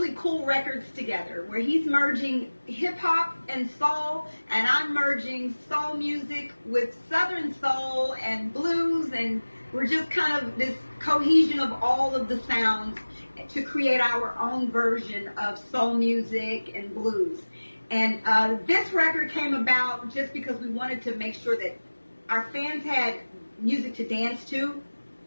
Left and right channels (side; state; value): both; inverted; correlation -1.00